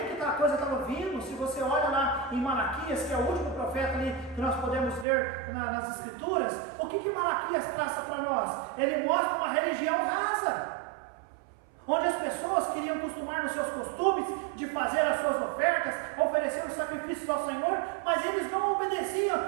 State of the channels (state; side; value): drops out; left; at 5.1 s